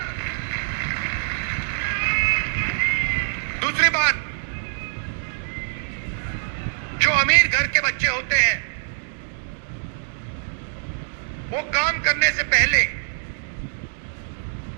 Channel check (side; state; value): left; silent; digital silence